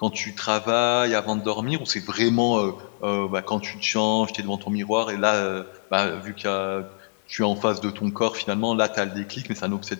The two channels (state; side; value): silent; right; 58 dB below the other